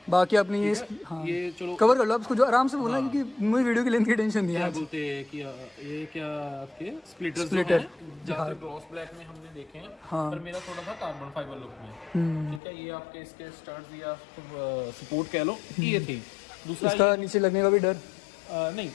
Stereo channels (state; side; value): drops out; right; at 12.6 s